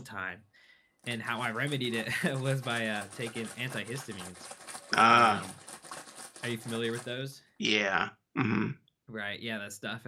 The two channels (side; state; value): both; identical; correlation 1.00